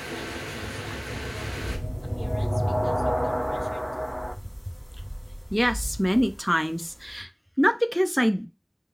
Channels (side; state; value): both; identical; correlation 1.00